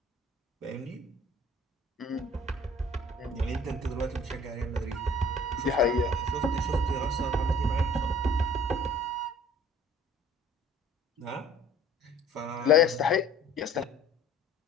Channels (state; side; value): normal; both; correlation 0.51